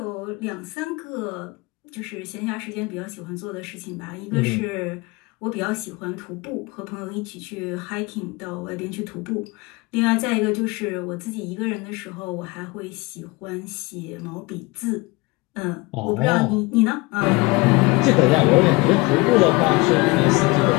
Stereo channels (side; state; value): right; quieter; 23.9 dB